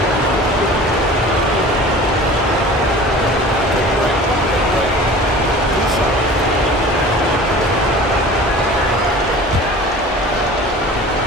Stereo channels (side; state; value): both; normal; correlation 0.41